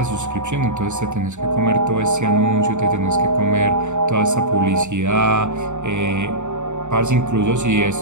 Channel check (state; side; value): late; left; 0.84 ms